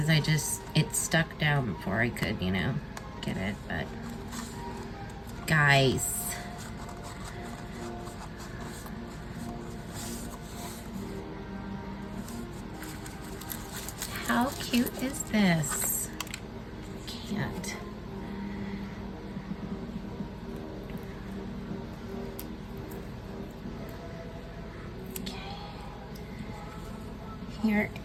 it stuck down before I could, you know, get it. But guys, How cute is this? Can't. Okay. Here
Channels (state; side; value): identical; both; correlation 1.00